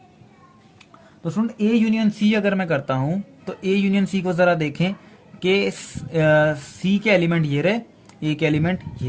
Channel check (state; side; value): identical; both; correlation 1.00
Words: तो स्टूडेंट ए यूनियन सी अगर मैं करता हूं तो ए यूनियन सी को जरा देखें कि सी के एलिमेंट ये रहे, ए के एलिमेंट